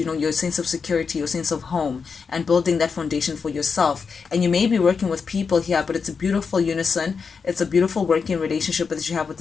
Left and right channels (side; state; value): right; quieter; 5.5 dB